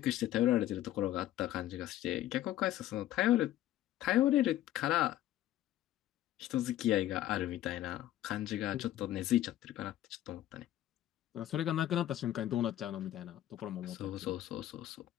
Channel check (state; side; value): quieter; right; 13.4 dB